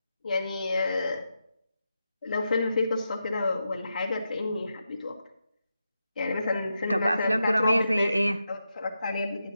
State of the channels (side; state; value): both; inverted; correlation -0.87